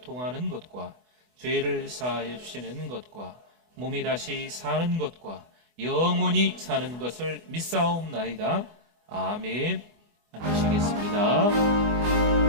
것과 죄를 사하여 주시는 것과 몸이 다시 사는 것과 영원히 사는 것을 믿사옵나이다. 아멘. 앉으시겠습니다.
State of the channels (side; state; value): left; late; 24 ms